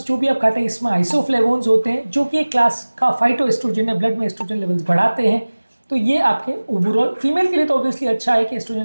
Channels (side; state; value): both; inverted; correlation -1.00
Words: जो भी आप खाते हैं इसमें आइसोफ्लेवोन्स होते हैं जो कि एक क्लास का फाइटो एस्ट्रोजन है, ब्लड में एस्ट्रोजन लेवल्स बढ़ाते हैं। तो ये आपके ओवरऑल फीमेल के लिए तो ऑब्वियसली अच्छा है कि एस्ट्रोजन